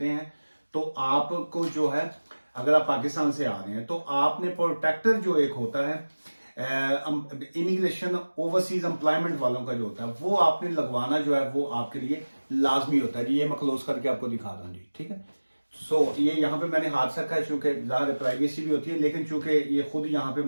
हैं, तो आपको जो है, अगर आप पाकिस्तान से आ रहे हैं तो आपने प्रोटेक्टर जो एक होता है इमिग्रेशन ओवरसीज एम्प्लॉयमेंट वालों का जो होता है वो आपने लगवाना जो है वो आपके लिए लाजमी होता है जी। ये मैं क्लोज करके आपको दिखा रहा हूँ जी, ठीक है। सो ये यहाँ पे मैंने हाथ रखा है, चूंकि ज़्यादा प्राइवेसी भी होती है, लेकिन चूंकि ये खुद यहाँ पे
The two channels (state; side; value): inverted; both; correlation -1.00